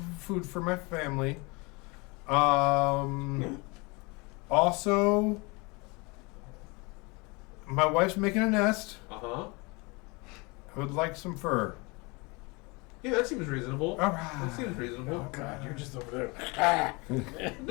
food for my family. Also, my wife's making a nest. Uh-huh. I would like some fur. Yeah, that seems reasonable. All right. That seems reasonable. Oh God, you're just over there.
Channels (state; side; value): quieter; right; 27.7 dB